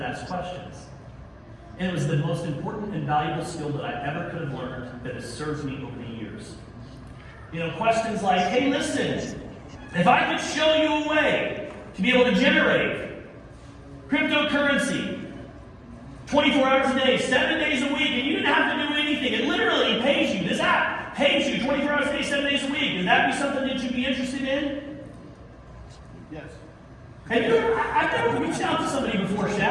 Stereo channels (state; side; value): identical; both; correlation 1.00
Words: ask questions. And it was the most important and valuable skill that I ever could have learned that has served me over the years. Questions like, hey, listen, if I could show you a way to be able to generate cryptocurrency 24 hours a day, 7 days a week, and you didn't have to do anything. It literally pays you. This app pays you 24 hours a day, 7 days a week. Would that be something that you'd be interested in? Yes. I've never reached out to somebody before,